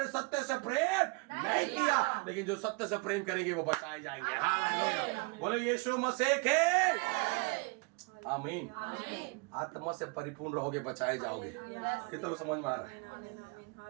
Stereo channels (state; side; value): quieter; left; 29.3 dB